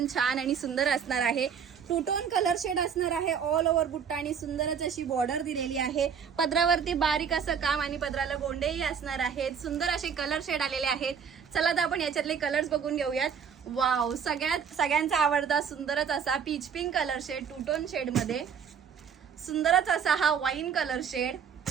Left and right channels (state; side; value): quieter; left; 7.1 dB